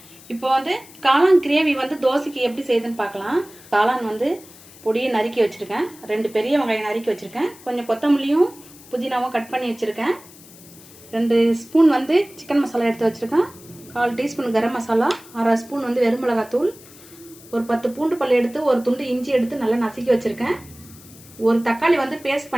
இப்போ வந்து காளான் கிரேவி வந்து தோசைக்கு எப்படி செய்யுதுன்னு பார்க்கலாம். காளான் வந்து பொடியை நறுக்கி வச்சுருக்கேன். 2 பெரிய வெங்காயம் நறுக்கி வச்சுருக்கேன். கொஞ்சம் கொத்தமல்லியும் புதினாவும் கட் பண்ணி வச்சுருக்கேன். 2 ஸ்பூன் வந்து சிக்கன் மசாலா எடுத்து வச்சுருக்கேன். 1/4 டீஸ்பூன் கரம் மசாலா, 1/2 ஸ்பூன் வந்து வெறுமிளகாத்தூள், ஒரு 10 பூண்டு பல் எடுத்து ஒரு துண்டு இஞ்சி எடுத்து நல்லா நசுக்கி வச்சுருக்கேன். ஒரு தக்காளி வந்து பேஸ்ட்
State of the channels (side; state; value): left; noise; hiss, 21 dB below the sound